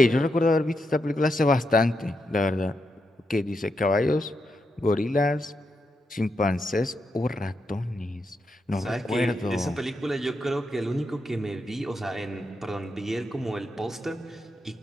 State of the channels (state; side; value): normal; both; correlation 0.84